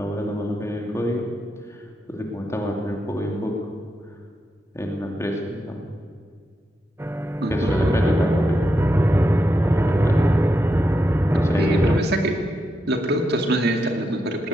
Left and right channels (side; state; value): both; normal; correlation 0.85